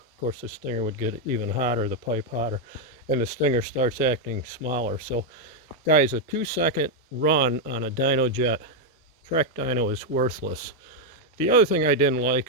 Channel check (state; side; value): normal; both; correlation 0.01